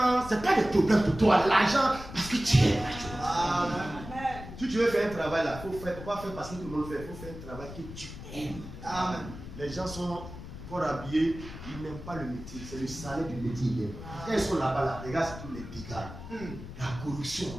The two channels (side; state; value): left; noise; rumble, 12 dB below the sound